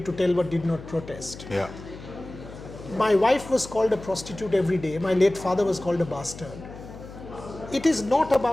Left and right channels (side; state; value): left; noise; hum, 15 dB below the sound